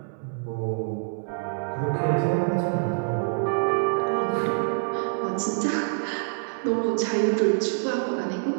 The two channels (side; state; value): left; silent; 61 dB below the other